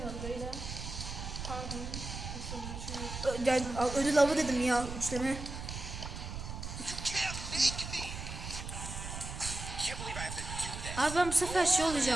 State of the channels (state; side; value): noise; right; rumble, 7 dB below the sound